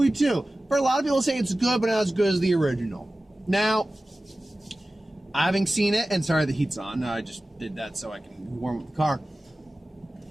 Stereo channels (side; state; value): both; normal; correlation 0.96